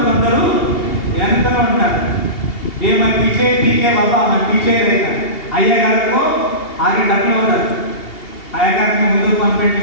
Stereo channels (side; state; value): right; late; 2.8 ms